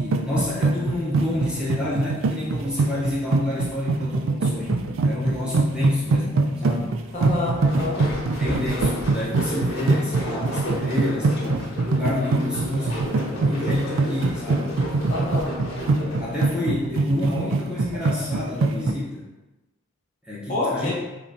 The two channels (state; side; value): normal; both; correlation 0.68